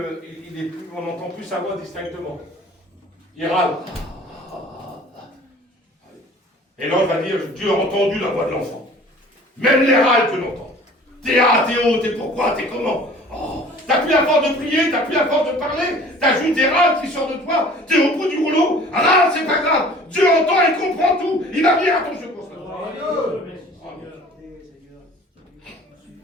on n'entend plus sa voix distinctement. Il râle. Et l'ange va dire, Dieu a entendu la voix de l'enfant. Même les râles que l'on entend. T'es haut, t'es pourquoi, t'es comment? Oh, t'as plus la force de prier, t'as plus la force de parler, t'as juste des râles qui sortent de toi, t'es au bout du rouleau, râle, c'est pas grave. Dieu entend et comprend tout, il va venir à ton secours.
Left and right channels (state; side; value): normal; both; correlation 0.48